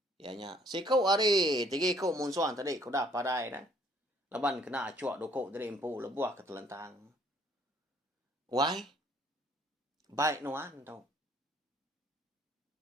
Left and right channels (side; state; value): both; normal; correlation 0.62